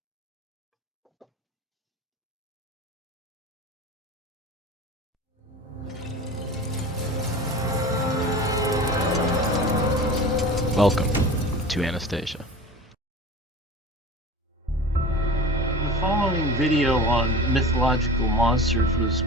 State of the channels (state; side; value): normal; both; correlation 0.36